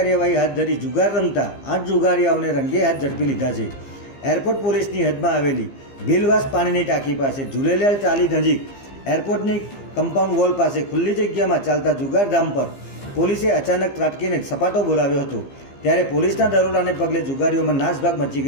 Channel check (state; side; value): late; right; 15 ms